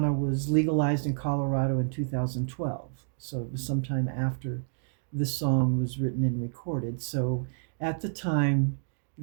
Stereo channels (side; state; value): left; silent; digital silence